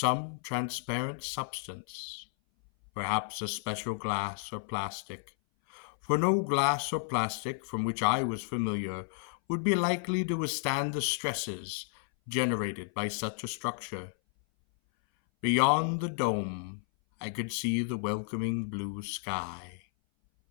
transparent substance, perhaps a special glass or plastic, for no glass or plastic from which I was familiar would be likely to withstand the stresses generated by such a structure. Beyond the dome, I could see the welcoming blue sky.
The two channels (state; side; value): silent; right; 56 dB below the other